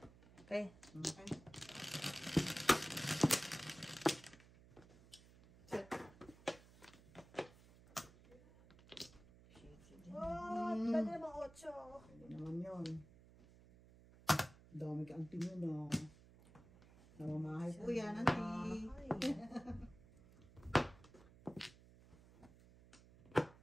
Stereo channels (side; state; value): right; noise; hum, 22 dB below the sound